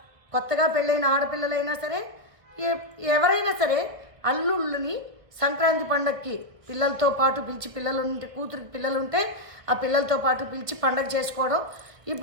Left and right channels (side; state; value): left; late; 1.5 ms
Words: కొత్తగా పెళ్ళైన ఆడపిల్లలైనా సరే ఎవరైనా సరే అల్లుళ్ళని సంక్రాంతి పండగకి పిల్లలతో పాటు పిలిచి, కూతురికి పిల్లలుంటే ఆ పిల్లలతో పాటు పిలిచి పండగ చేసుకోవడం.